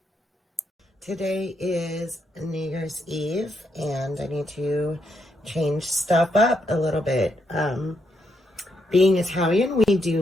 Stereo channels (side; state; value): both; normal; correlation 0.79